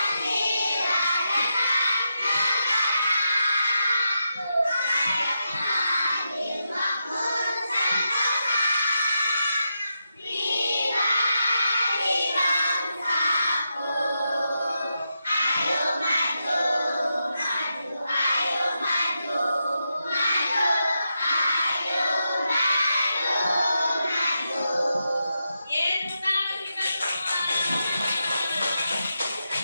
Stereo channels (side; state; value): both; inverted; correlation -0.86